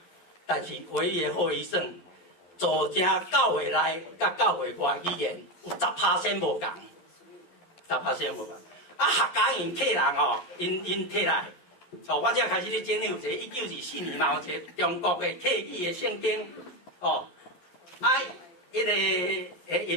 但是唯一的后遗症，造成教会内甲教会外语言有10%无共，10%无共。啊，客家因客人哦，因摕来。哦，我才开始咧整理有一个1924年嘛，有一个中国的客语的圣经，哦，啊，迄个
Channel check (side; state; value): right; late; 11 ms